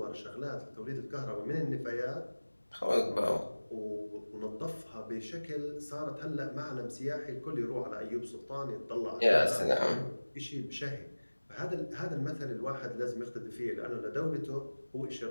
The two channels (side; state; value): both; inverted; correlation -1.00